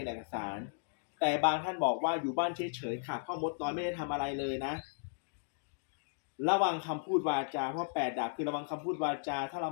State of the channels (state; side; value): silent; right; digital silence